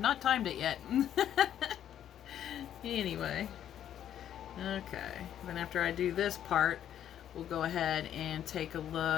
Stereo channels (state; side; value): quieter; right; 10.4 dB